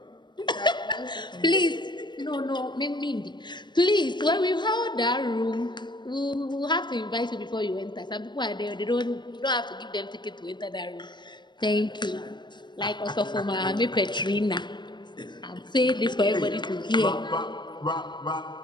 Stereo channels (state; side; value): late; right; 0.22 ms